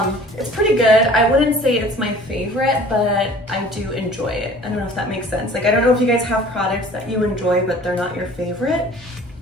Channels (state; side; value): normal; both; correlation 0.48